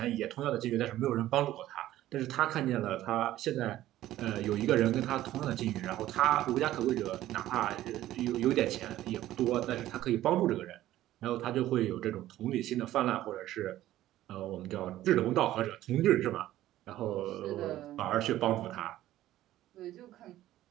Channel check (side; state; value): left; quieter; 14.2 dB